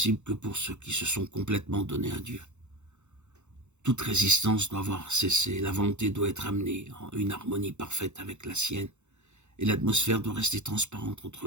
que pour ceux qui se sont complètement donnés à Dieu. Toute résistance doit avoir cessé, la volonté doit être amenée en une harmonie parfaite avec la sienne, et l'atmosphère doit rester transparente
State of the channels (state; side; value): late; left; 0.83 ms